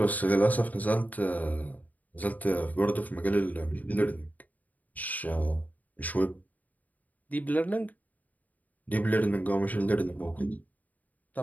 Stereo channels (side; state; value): right; late; 0.077 ms